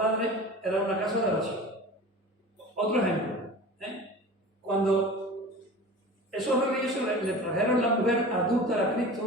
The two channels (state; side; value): normal; both; correlation 0.36